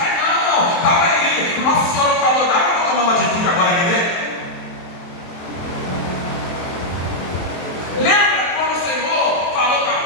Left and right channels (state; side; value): late; right; 23 ms